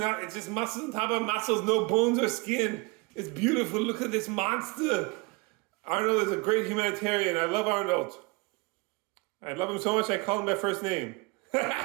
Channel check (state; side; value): quieter; left; 27.2 dB